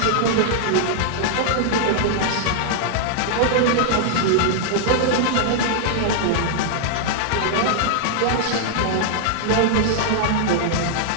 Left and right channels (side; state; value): both; different; correlation -0.01